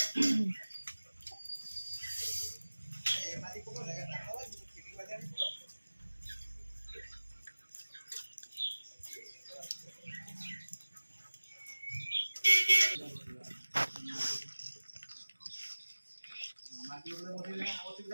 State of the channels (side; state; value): both; inverted; correlation -1.00